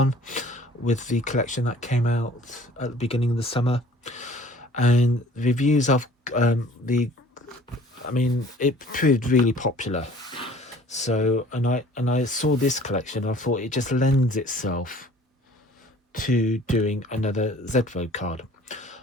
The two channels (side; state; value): both; normal; correlation 0.51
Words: with the collection that came out at the beginning of the summer, and the reviews of it proved really popular. So and I saw this collection and I thought it just lends itself to doing another Z-Fold card.